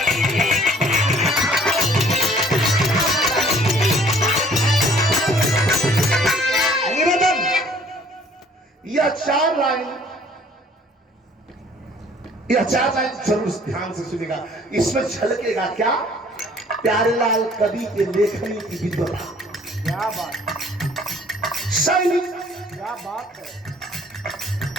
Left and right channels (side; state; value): both; normal; correlation 0.56